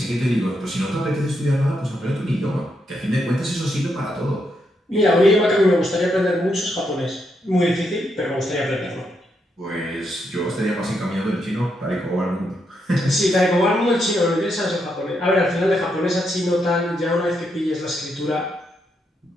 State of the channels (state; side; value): normal; both; correlation 0.80